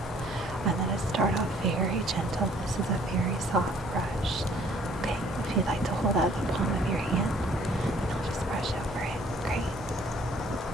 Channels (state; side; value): normal; both; correlation 0.59